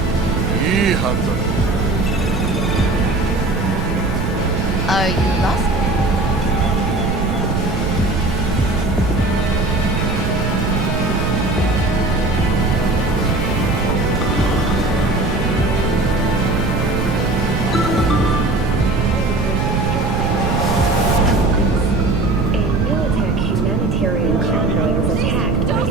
Are you lost? Humanitarian convoy was attacked by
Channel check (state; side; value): noise; right; rumble, 1 dB below the sound